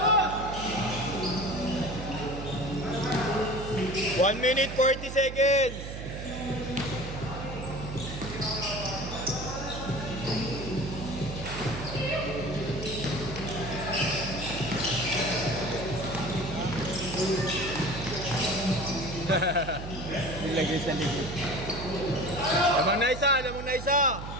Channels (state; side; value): noise; right; hum, 8 dB below the sound